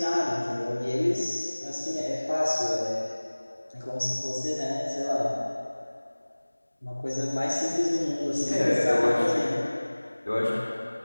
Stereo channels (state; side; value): inverted; both; correlation -1.00